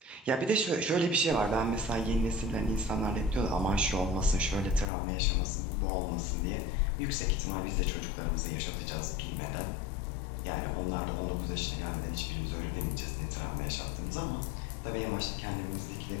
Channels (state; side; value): drops out; right; at 4.9 s